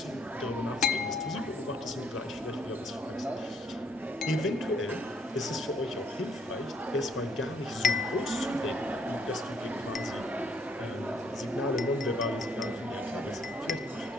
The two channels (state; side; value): normal; both; correlation 0.66